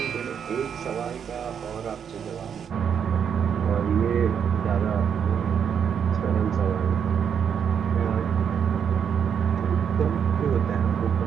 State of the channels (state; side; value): quieter; left; 7.7 dB